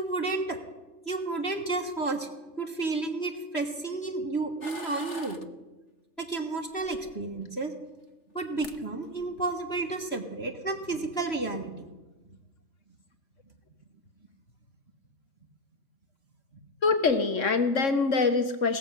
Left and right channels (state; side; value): late; right; 3.0 ms